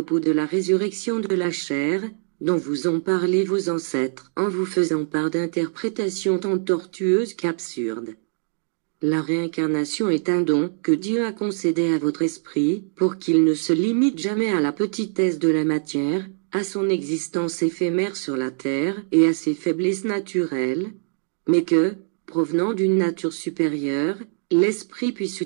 de la résurrection de la chair, dont vous ont parlé vos ancêtres en vous faisant part d'interprétations tant tortueuses qu'absurdes. La réincarnation est un don que Dieu a concédé à votre esprit pour qu'il ne se limite jamais à la petitesse de la matière, à son existence éphémère sur la terre et à ses faiblesses naturelles, mais que, provenant d'une nature supérieure, l'esprit puisse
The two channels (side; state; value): left; silent; 63 dB below the other